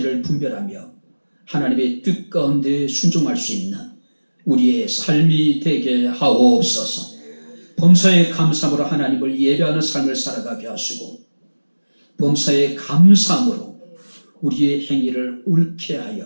분별하며 하나님의 뜻 가운데 순종할 수 있는 우리의 삶이 되게 하옵소서. 범사에 감사함으로 하나님을 예배하는 삶을 살아가게 하시고 범사에 감사함으로 우리의 행위를 옳게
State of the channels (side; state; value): both; inverted; correlation -1.00